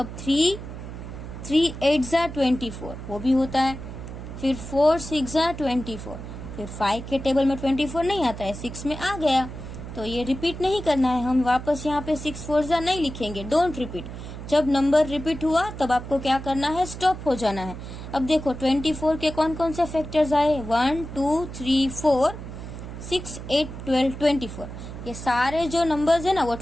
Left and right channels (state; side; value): noise; right; hum, 10 dB below the sound